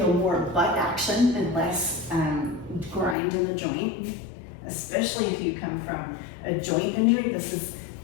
more butt action and less grind in the joint, especially if you come from a joint injury. This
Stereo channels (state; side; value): drops out; right; at 3.2 s